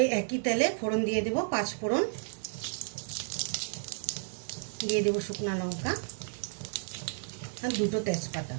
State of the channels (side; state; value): left; silent; digital silence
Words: একই তেলে ফোড়ন দিয়ে দেব 5 ফোড়ন, দিয়ে দেব শুকনো লঙ্কা আর 2টো তেজপাতা।